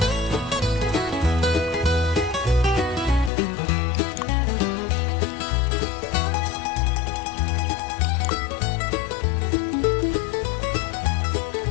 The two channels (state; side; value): drops out; right; at 3.3 s